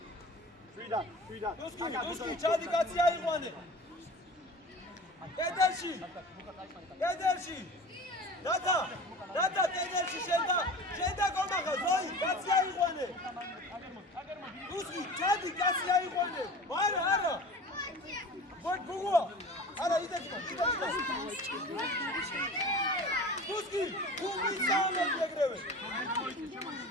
შვიდა. თუსკი ჩადი კაცი აიყვანე. კედელში. რათა კედელში შენდა გომახა ზოი კაცი აიყვანე. თუსკი ჩადი კაცი აიყვანე. არა. გუგუა. არა იდეჭმა. თუსკი გუგი საუბრობ ეგრევე.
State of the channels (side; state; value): both; normal; correlation 0.38